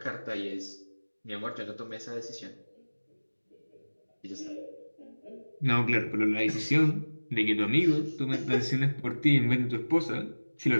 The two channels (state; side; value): inverted; both; correlation -1.00